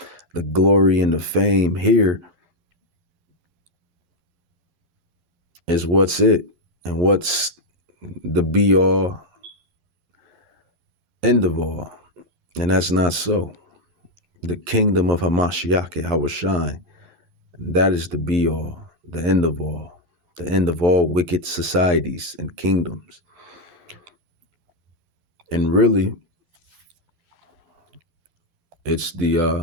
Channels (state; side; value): late; left; 11 ms